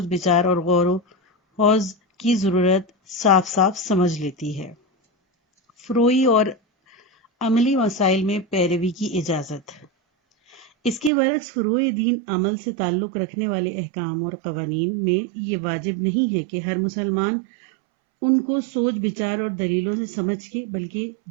بچار اور غور و خوض کی ضرورت صاف صاف سمجھ لیتی ہے۔ فروعی اور عملی مسائل میں پیروی کی اجازت۔ اس کے برعکس فروع دین عمل سے تعلق رکھنے والے احکام اور قوانین میں یہ واجب نہیں ہے کہ ہر مسلمان ان کو سوچ بچار اور دلیلوں سے سمجھ کے، بلکہ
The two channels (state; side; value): drops out; left; at 11.1 s